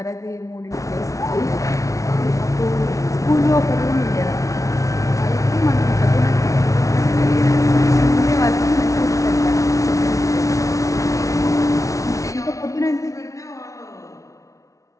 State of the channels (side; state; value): right; late; 0.16 ms